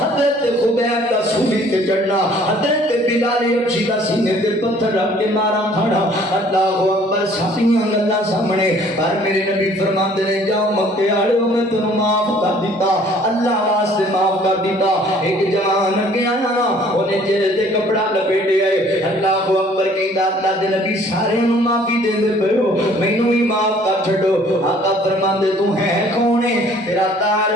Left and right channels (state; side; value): normal; both; correlation 0.56